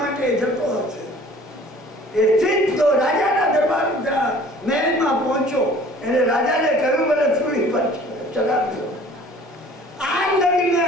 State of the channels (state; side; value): normal; both; correlation 0.50